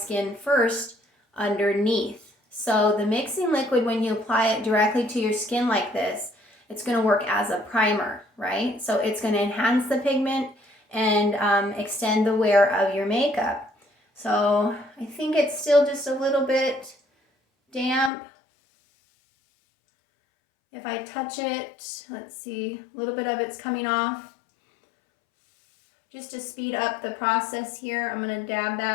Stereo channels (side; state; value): right; drops out; at 18.1 s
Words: first underneath. So the mixing liquid, when you apply it directly to your skin like this, it's gonna work as a primer, right? So it's gonna enhance the pigment and extend the wear of your makeup. So I think it's still just a little bit damp. If I touch it, let's see, a little bit of it's coming off. Just to speed up the process here, I'm going to dab